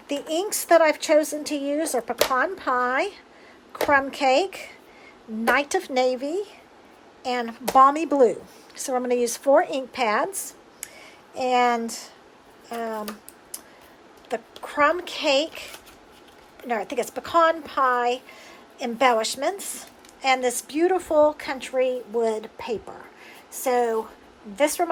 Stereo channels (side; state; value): both; identical; correlation 1.00